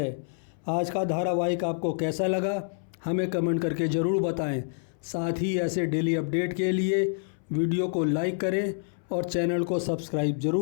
आज का धारावाहिक आपको कैसा लगा हमें कमेंट करके ज़रूर बताएं। साथ ही ऐसे डेली अपडेट के लिए वीडियो को लाइक करें और चैनल को सब्सक्राइब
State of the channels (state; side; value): silent; right; 60 dB below the other